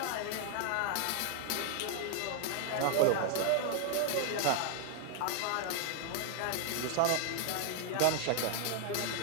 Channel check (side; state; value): both; different; correlation 0.00